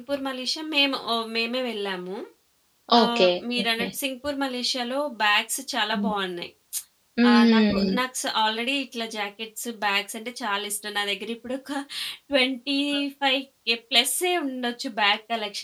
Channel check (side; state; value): both; identical; correlation 1.00